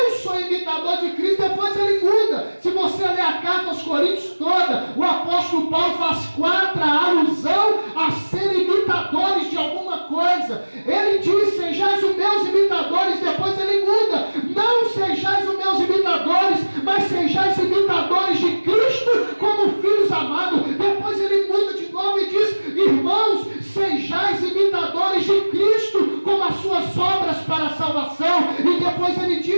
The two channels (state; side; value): inverted; both; correlation -1.00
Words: sou imitador de Cristo. Depois ele muda. Se você ler a carta aos Coríntios toda, o apóstolo Paulo faz 4 alusão a ser imitadores de alguma coisa. Ele diz, sejais os meus imitadores. Depois ele muda, não sejais os meus imitadores, mas sejais imitadores de Cristo como filhos amados. Depois ele muda de novo e diz, irmãos, sejais imitadores de Cristo como as suas obras para a salvação. E depois ele